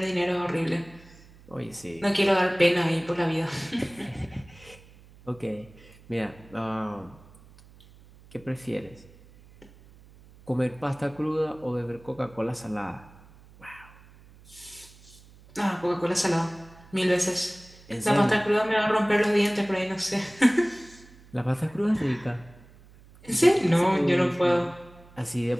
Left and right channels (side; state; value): right; noise; hum, 24 dB below the sound